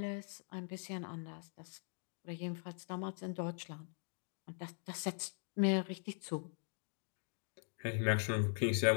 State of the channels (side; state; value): right; silent; 50 dB below the other